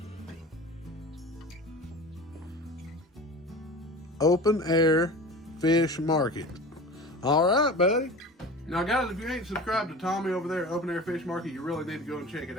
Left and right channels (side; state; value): both; normal; correlation 0.35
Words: Open Air Fish Market. All right, buddy. Now, guys, if you ain't subscribed to Tommy over there at Open Air Fish Market, you really need to go and check it